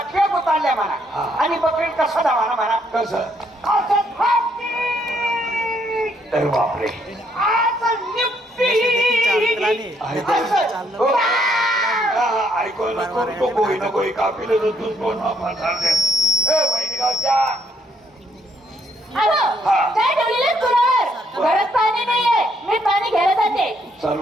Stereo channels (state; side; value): normal; both; correlation 0.71